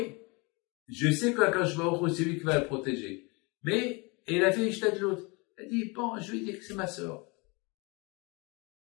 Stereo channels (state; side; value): quieter; right; 28.6 dB